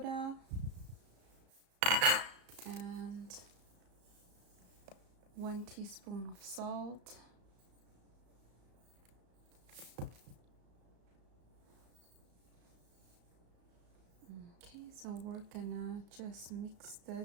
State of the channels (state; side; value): late; left; 34 ms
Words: and 1 teaspoon of salt. Okay, so we're gonna just mix the